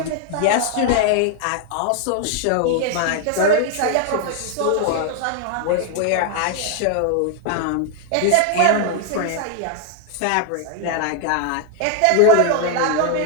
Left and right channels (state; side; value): different; both; correlation 0.00